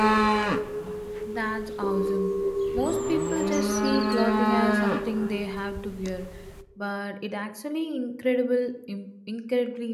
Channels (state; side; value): identical; both; correlation 1.00